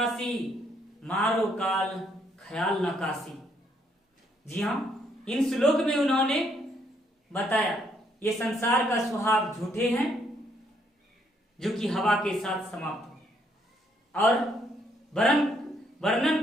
मारो काल ख्याल नकासी। जी हाँ, इन श्लोक में उन्होंने बताया ये संसार का सुहाग झूठे हैं जो कि हवा के साथ समाप्त हो, और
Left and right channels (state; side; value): normal; both; correlation 0.71